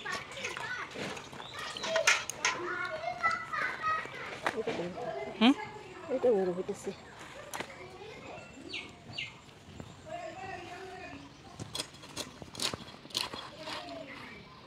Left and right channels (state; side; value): identical; both; correlation 1.00